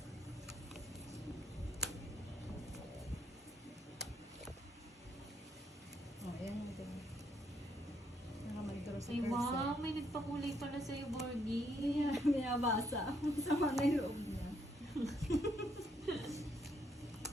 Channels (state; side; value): normal; both; correlation 0.73